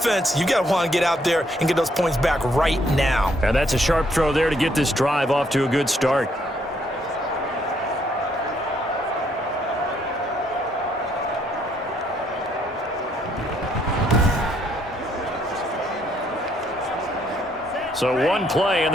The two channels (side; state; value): both; normal; correlation 0.70